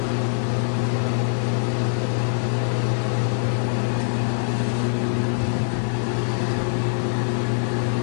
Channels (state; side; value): silent; right; 56 dB below the other